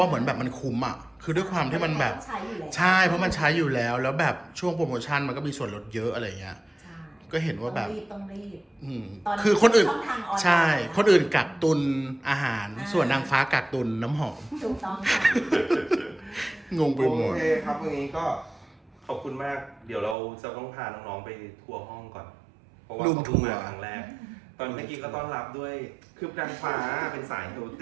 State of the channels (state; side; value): drops out; left; at 20.2 s